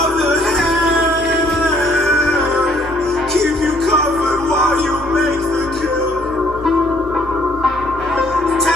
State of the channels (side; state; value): both; normal; correlation 0.63